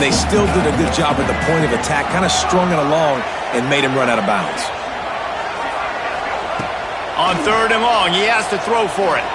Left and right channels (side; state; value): both; identical; correlation 1.00